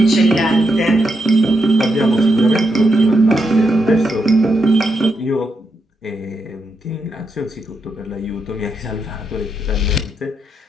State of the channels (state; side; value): normal; both; correlation 0.82